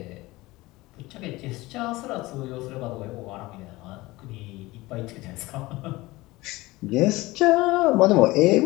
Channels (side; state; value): right; quieter; 20.1 dB